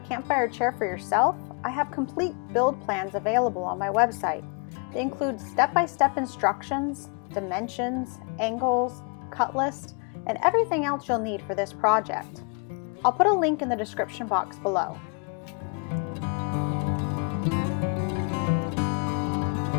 campfire chair for yourself, I have complete build plans available on my website. They include step-by-step instructions, dimensions, angles, cut list, and everything else you'll need for this project. I'll put a link in the description box below.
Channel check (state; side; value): quieter; right; 36.8 dB